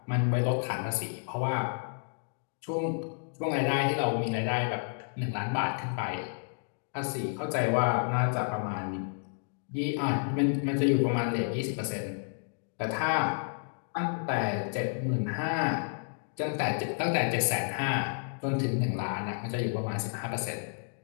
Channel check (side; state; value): right; silent; digital silence